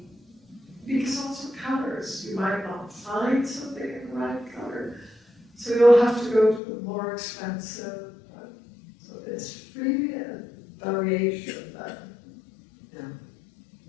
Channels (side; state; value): right; drops out; at 6.6 s